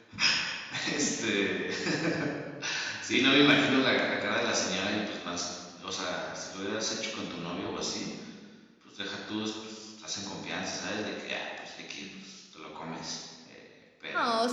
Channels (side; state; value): both; identical; correlation 1.00